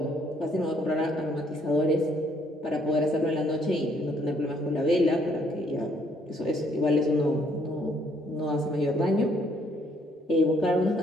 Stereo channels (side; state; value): both; normal; correlation 0.67